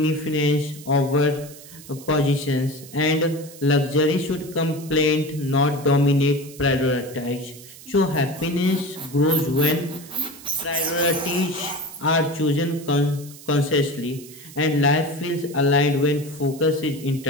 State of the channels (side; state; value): right; noise; hiss, 18 dB below the sound